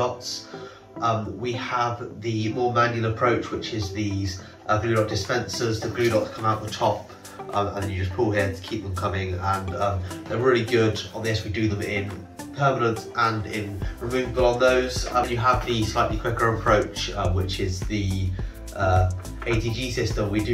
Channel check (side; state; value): both; identical; correlation 1.00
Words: We have the more manual approach, which is these glue dot dispensers. The glue dots come out the top and then you just pull here to keep them coming, and they're really good on this. We do them in permanent and in removable on those. You have the slightly quicker approach, which is the ATG system. We